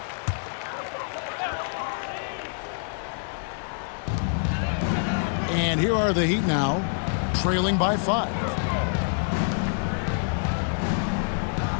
And here are the Heat now, trailing by 5.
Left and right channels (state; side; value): silent; right; digital silence